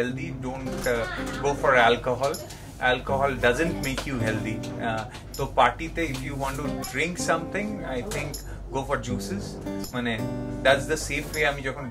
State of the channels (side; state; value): both; identical; correlation 1.00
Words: don't go for alcohol doesn't make you healthy. তো পার্টিতে if you want to drink something, I think go for juices. মানে that's the safe way. আমি যখন